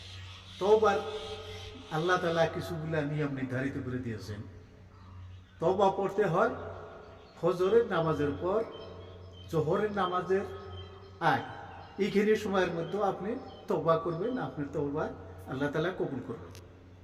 তওবার আল্লাহ তাআলা কিছুগুলা নিয়ম নির্ধারিত করে দিয়েছেন। তওবা পড়তে হয় ফজরের নামাজের পর, জোহরের নামাজের আগে। এইখানে সময়ের মধ্যে আপনি তওবা করবেন, আপনার তওবা আল্লাহ তাআলা কবুল করবেন।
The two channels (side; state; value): both; identical; correlation 1.00